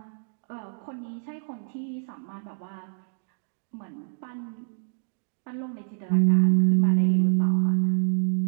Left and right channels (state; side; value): silent; left; digital silence